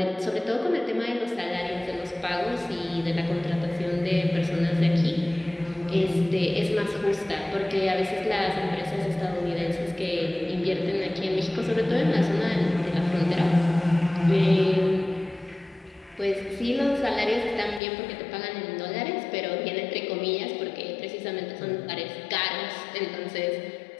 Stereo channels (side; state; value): right; drops out; at 17.8 s